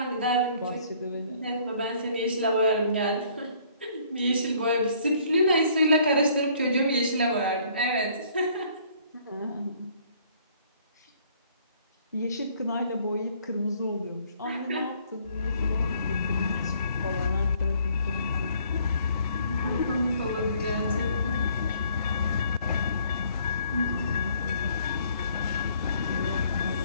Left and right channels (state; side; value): inverted; both; correlation -0.61